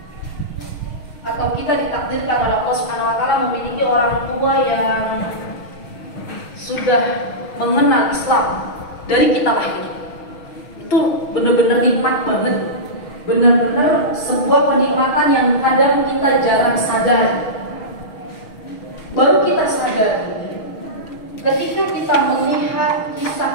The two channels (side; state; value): right; late; 6.3 ms